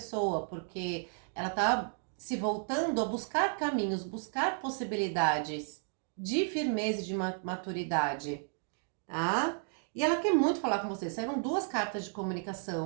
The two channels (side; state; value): left; silent; 56 dB below the other